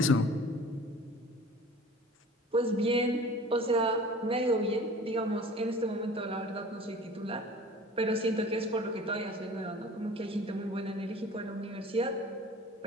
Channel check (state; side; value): normal; both; correlation 0.44